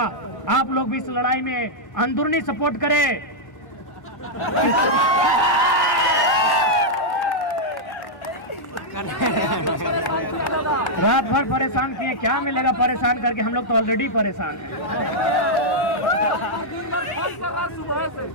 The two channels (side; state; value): right; late; 1.1 ms